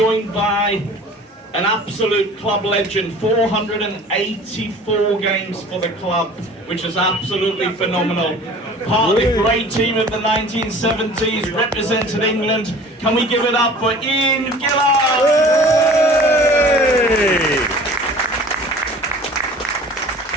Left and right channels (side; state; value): both; normal; correlation 0.46